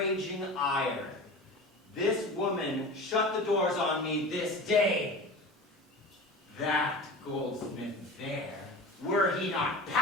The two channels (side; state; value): both; normal; correlation 0.33